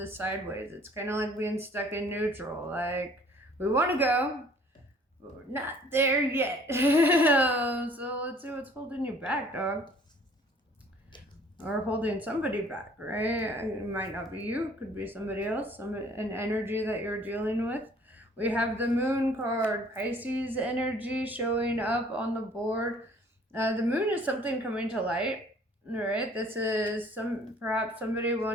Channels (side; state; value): both; normal; correlation 0.55